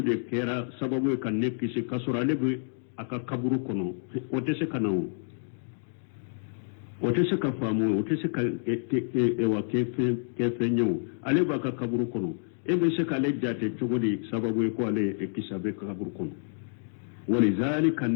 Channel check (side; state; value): right; silent; digital silence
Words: kera sababu kan nekisi kasura lebu aka kaburu kono otese kanawo otese ka famu otese ka ewa kefe nyawo ale ba ka kaburu kono ebe se ka le jate chogodi sababu ko ale ekisabe ka kaburu kono walizalika